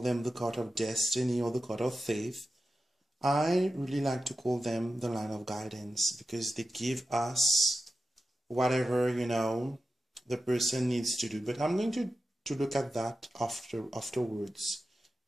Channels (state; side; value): normal; both; correlation 0.91